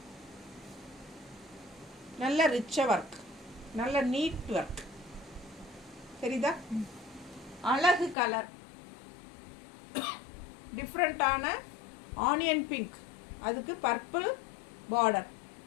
நல்ல ரிச்சாக ஒர்க், நல்ல நீட் ஒர்க் தெரியுதா? அழகு கலர், டிஃப்ரெண்ட்டான ஆனியன் பிங்க், அதுக்கு பர்பிள் பார்டர்,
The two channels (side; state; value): right; drops out; at 8.2 s